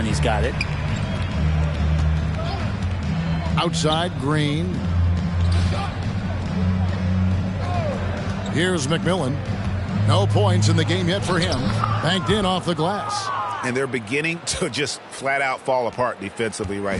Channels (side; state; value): both; identical; correlation 1.00